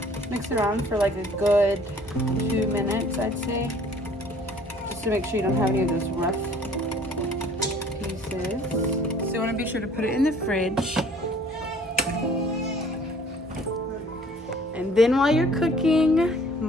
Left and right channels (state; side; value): normal; both; correlation 0.54